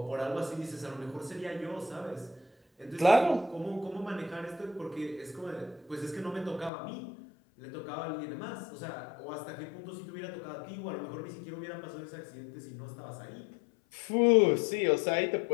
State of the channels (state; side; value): drops out; right; at 6.7 s